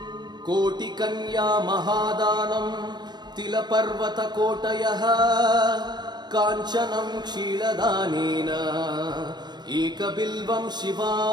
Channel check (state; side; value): late; left; 0.21 ms